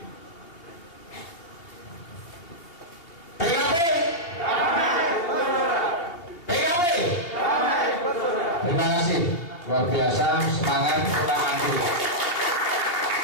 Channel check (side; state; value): right; late; 2.8 ms